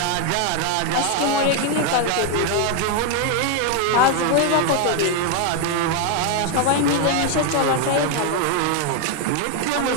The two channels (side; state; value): both; different; correlation 0.01